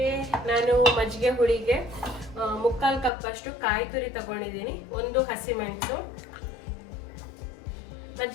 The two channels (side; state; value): right; drops out; at 3.1 s